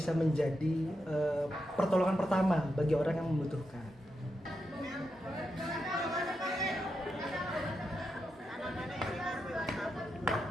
menjadi pertolongan pertama bagi orang yang membutuhkan.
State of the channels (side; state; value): both; normal; correlation 0.85